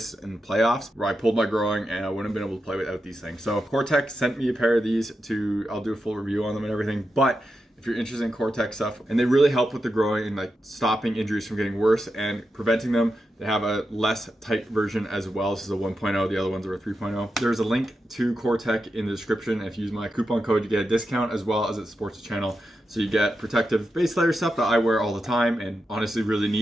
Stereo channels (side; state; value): both; normal; correlation 0.88